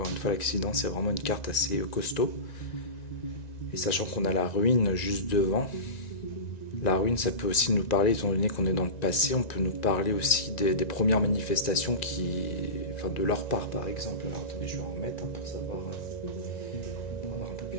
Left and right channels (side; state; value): right; late; 1.9 ms